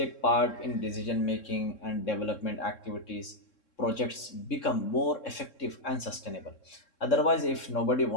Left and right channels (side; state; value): right; late; 3.6 ms